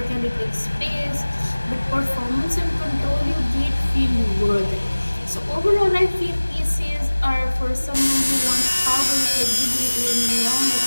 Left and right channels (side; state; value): both; inverted; correlation -1.00